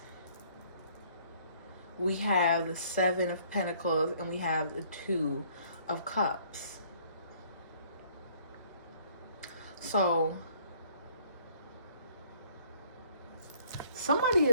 we have the Seven of Pentacles, and we have the Two of Cups. So somebody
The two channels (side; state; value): both; inverted; correlation -0.60